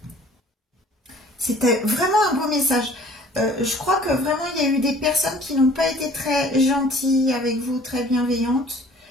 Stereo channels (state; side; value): normal; both; correlation 0.51